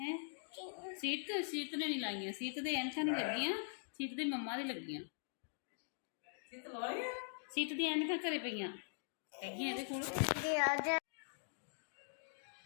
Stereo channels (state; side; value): silent; right; digital silence